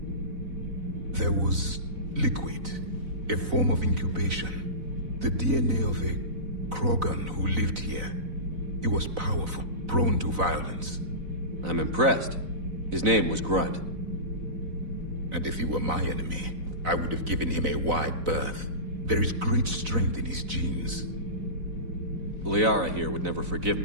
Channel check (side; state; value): left; late; 4.0 ms